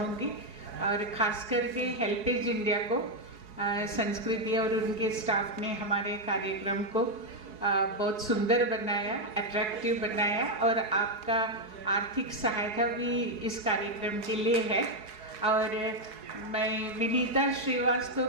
और ख़ास करके हेल्पेज इंडिया को, संस्कृति और उनके स्टाफ ने हमारे कार्यक्रम को बहुत सुंदर बनाया, अट्रैक्टिव बनाया, और आपका आर्थिक सहायता भी इस कार्यक्रम के लिए है। और मैं विनीता श्रीवास्तव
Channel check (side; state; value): left; late; 4.7 ms